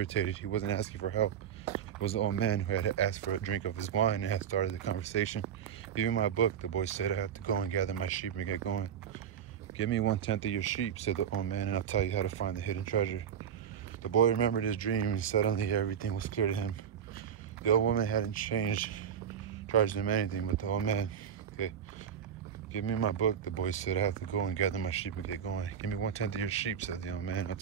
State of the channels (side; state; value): left; quieter; 8.5 dB